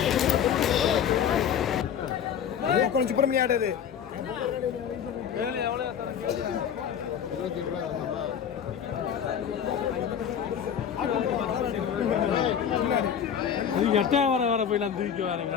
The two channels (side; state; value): right; quieter; 8.4 dB